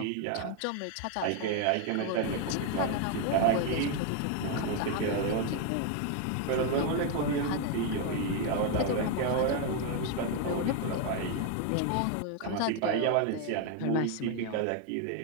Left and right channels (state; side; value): different; both; correlation 0.01